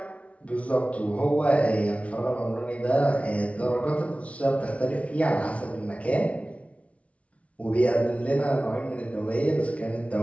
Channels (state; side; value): late; right; 0.064 ms